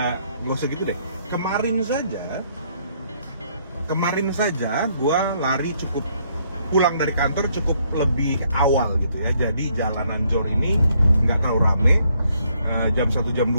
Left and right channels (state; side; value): inverted; both; correlation -0.70